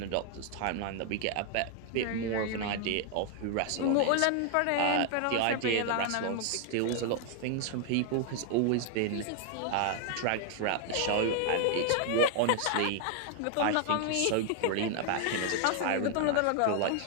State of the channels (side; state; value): both; different; correlation 0.00